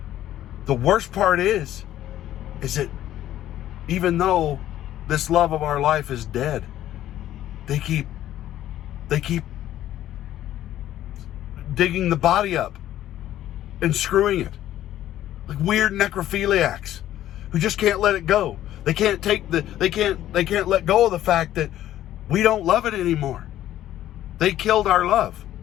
the worst part is that even though this love of our life is dead, they keep digging the body up and screwing it, like weird necrophiliacs who just can't let it go. They can't let go of the fact that we don't love it anymore. They killed our love,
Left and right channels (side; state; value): right; quieter; 12.8 dB